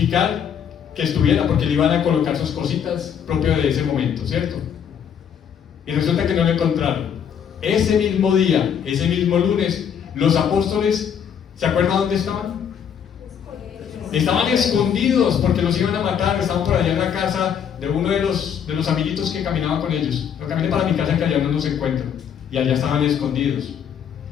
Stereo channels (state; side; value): quieter; right; 8.2 dB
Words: que estuviera, porque le iban a colocar sus cositas propio de ese momento, ¿cierto? Y resulta que no lo encontraron. Ese mismo día, ese mismo lunes, los apóstoles, ¿se acuerdan dónde estaban? Estaban escondidos porque los iban a matar. Estaban por allá en la casa de uno de los amiguitos que caminaba con ellos. Yo caminé para mi casa, que allá no nos encuentran, y allá estaban escondidos.